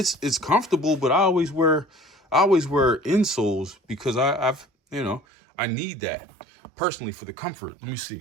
comfortable, but I always wear insoles because I need that personally for the comfort. Let me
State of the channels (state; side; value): drops out; left; at 5.2 s